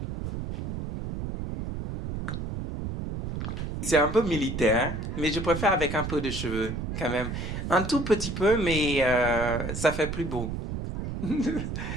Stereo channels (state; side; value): noise; right; rumble, 5 dB below the sound